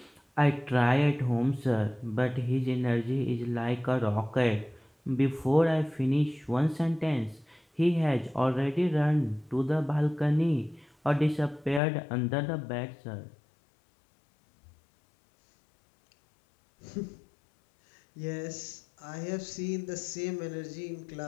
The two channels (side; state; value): right; drops out; at 11.8 s